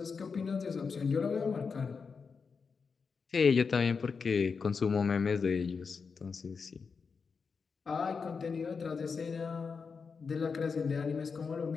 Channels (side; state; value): right; quieter; 5.3 dB